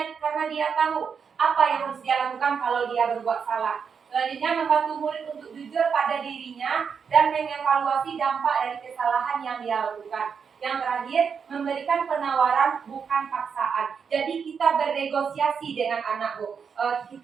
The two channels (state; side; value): quieter; left; 6.4 dB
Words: dia tahu apa yang harus dia lakukan kalau dia berbuat salah. Selanjutnya membantu murid untuk jujur pada dirinya dan mengevaluasi dampak dari kesalahan yang dia lakukan. Yang terakhir, memberikan penawaran bukan paksaan. Jadi kita bernegosiasi dengan anak Bu.